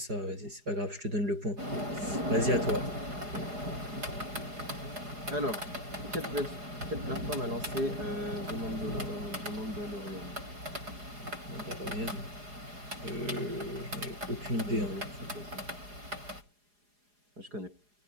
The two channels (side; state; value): left; late; 4.8 ms